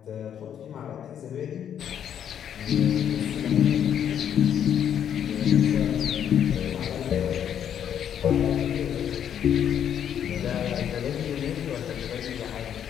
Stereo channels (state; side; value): quieter; right; 9.2 dB